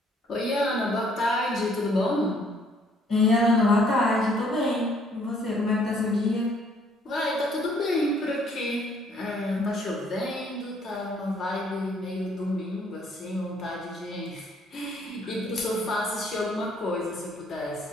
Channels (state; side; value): normal; both; correlation 0.63